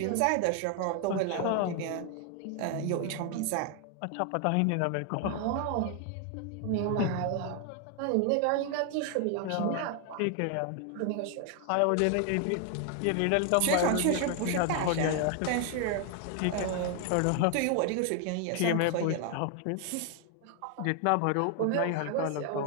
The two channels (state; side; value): different; both; correlation 0.00